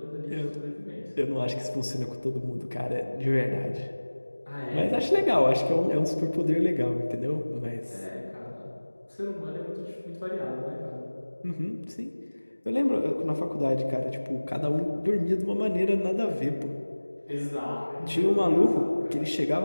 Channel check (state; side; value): inverted; both; correlation -1.00